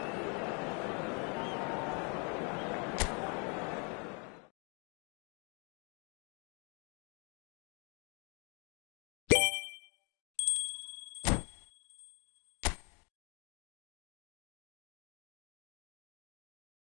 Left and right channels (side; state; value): right; quieter; 35.4 dB